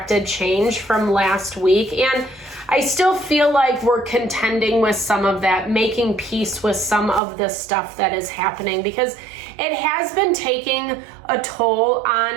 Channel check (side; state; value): left; drops out; at 7.2 s